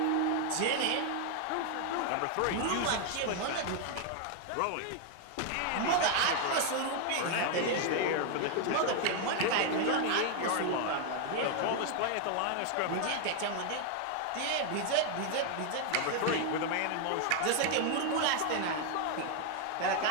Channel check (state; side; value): different; both; correlation 0.00